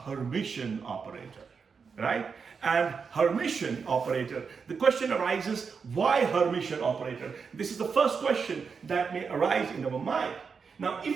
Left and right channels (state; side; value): quieter; left; 5.6 dB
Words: operator, right? And Hermitian operator, the question arises, why Hermitian operator? This is the first question that may arise in our mind. Now,